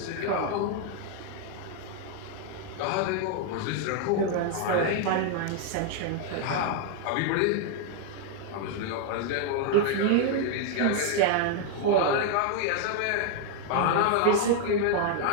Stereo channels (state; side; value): different; both; correlation 0.00